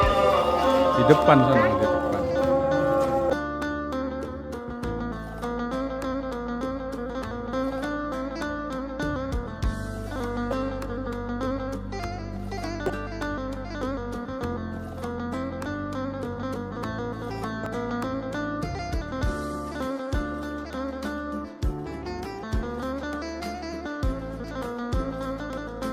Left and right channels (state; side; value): identical; both; correlation 1.00